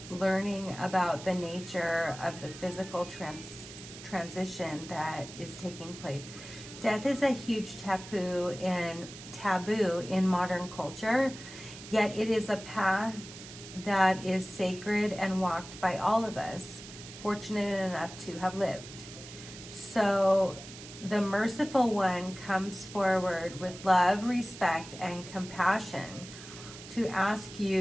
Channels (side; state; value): right; noise; hiss, 14 dB below the sound